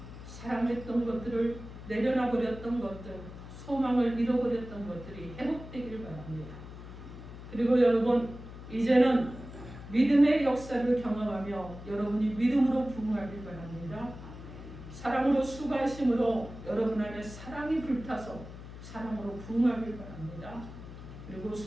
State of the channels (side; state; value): left; noise; hum, 13 dB below the sound